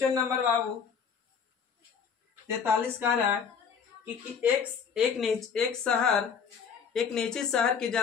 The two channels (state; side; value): quieter; right; 6.6 dB